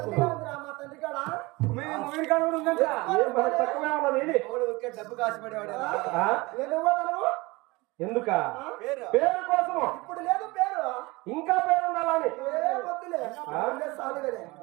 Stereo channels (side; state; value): left; quieter; 23.1 dB